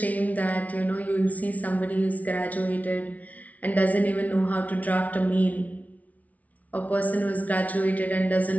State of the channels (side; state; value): right; late; 0.071 ms